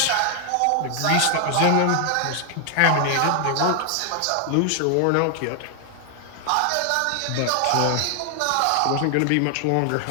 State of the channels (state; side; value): different; both; correlation 0.00